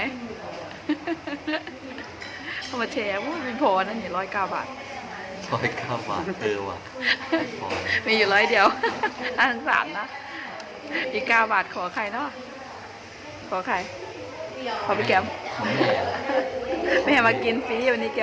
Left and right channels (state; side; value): identical; both; correlation 1.00